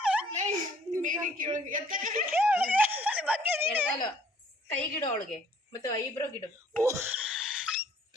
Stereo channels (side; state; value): both; normal; correlation 0.59